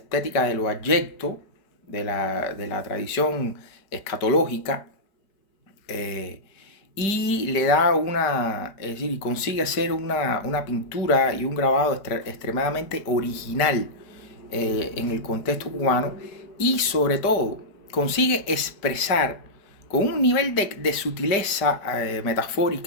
de lo abyecto, de la tradición escatológica, eh, y le da es decir, y consigue hacer una pintura y un grabado extremadamente original en el contexto cubano y sobre todo consigue expresar con un nivel de sutileza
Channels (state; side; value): late; right; 5.1 ms